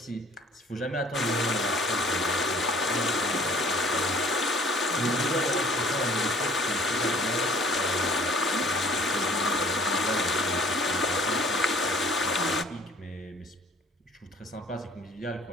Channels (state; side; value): normal; both; correlation 0.53